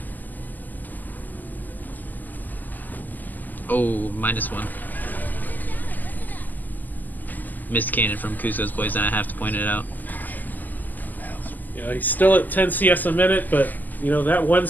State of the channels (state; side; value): late; right; 0.084 ms